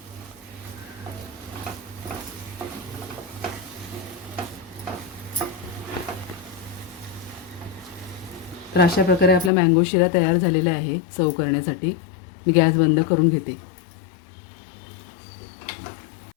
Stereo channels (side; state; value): right; drops out; at 9.5 s